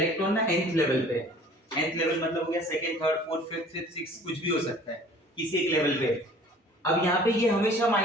ना nth level पे, nth level मतलब हो गया second, third, fourth, fifth, sixth, sixth, कुछ भी हो सकता है किसी एक लेवल पे। अब यहाँ पे ये हमेशा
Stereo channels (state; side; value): normal; both; correlation 0.49